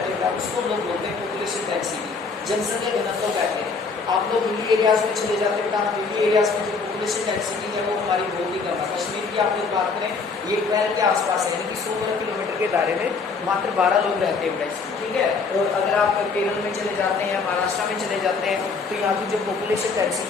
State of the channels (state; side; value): quieter; right; 4.7 dB